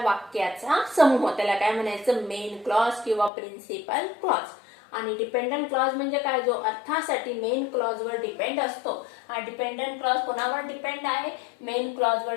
समूह, त्याला काय म्हणायचं? मेन क्लॉज किंवा प्रिन्सिपल क्लॉज. आणि डिपेंडंट क्लॉज म्हणजे काय? जो अर्थासाठी मेन क्लॉज वर डिपेंड असतो. हा डिपेंडंट क्लॉज कोणावर डिपेंड आहे? मेन क्लॉज वर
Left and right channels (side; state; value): right; drops out; at 3.3 s